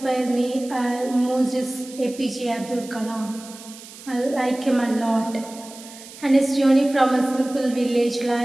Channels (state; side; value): noise; right; hiss, 17 dB below the sound